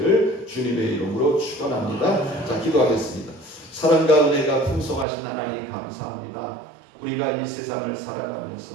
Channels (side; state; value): left; drops out; at 5.1 s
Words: 주님의 이름으로 축원합니다. 자, 기도하겠습니다. 사랑과 은혜가 풍성하신 하나님 감사합니다. 우리가 이 세상을